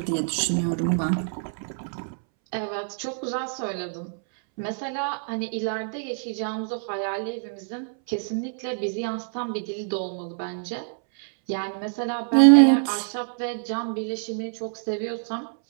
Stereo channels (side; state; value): left; silent; 61 dB below the other